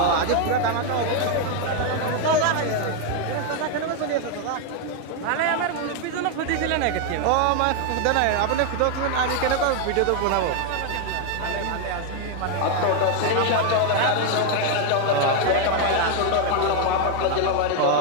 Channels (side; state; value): both; different; correlation 0.01